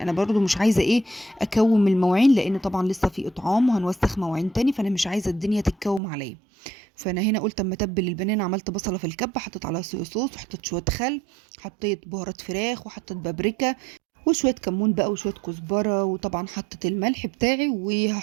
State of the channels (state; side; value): drops out; left; at 6.0 s